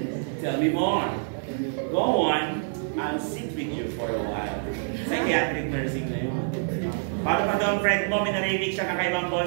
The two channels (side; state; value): left; silent; digital silence